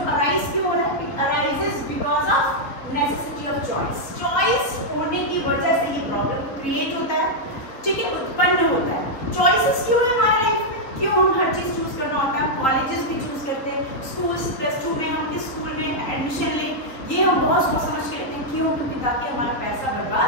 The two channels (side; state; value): right; late; 3.6 ms